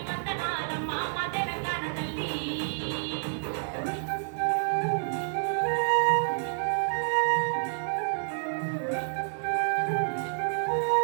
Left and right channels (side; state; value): left; silent; 59 dB below the other